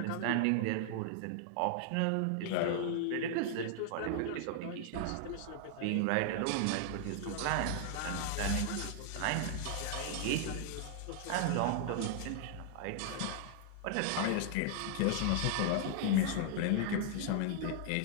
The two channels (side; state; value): both; different; correlation 0.00